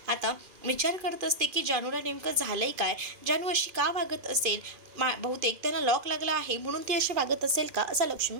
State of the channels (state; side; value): late; left; 2.4 ms